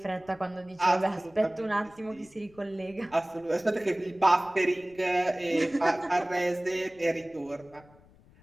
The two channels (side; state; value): left; noise; rumble, 27 dB below the sound